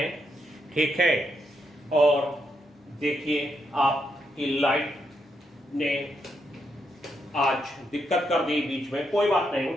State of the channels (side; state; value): both; normal; correlation 0.80